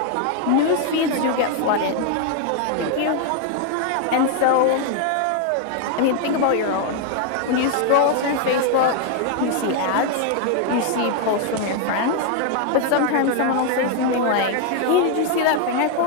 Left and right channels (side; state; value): both; different; correlation 0.00